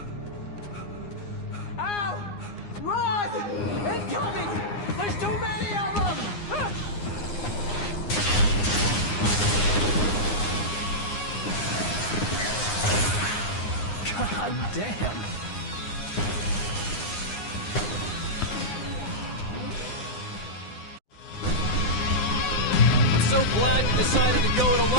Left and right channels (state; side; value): late; right; 9.7 ms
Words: Al! Run! Incoming! There's too many of them! God damn! So glad you decided to go it